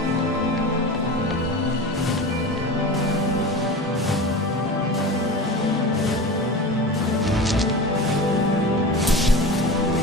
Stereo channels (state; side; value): normal; both; correlation 0.31